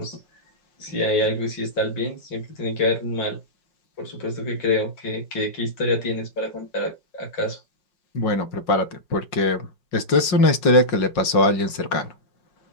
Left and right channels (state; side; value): late; right; 5.5 ms